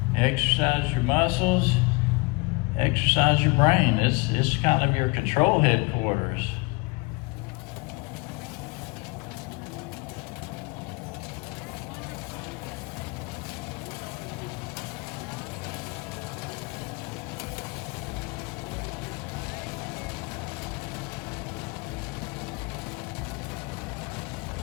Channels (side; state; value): right; quieter; 26.8 dB